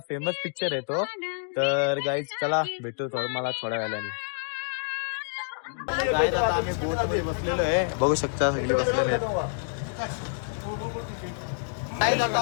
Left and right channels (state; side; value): silent; right; digital silence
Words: फेमस पिक्चर आहे तो. तर गाईज चला भेटू मला थोड्या वेळाने. गाईज आता आम्ही बोट मध्ये बसलेलो आहे, बघू शकता सगळे बसलेले आहेत. गाईज आता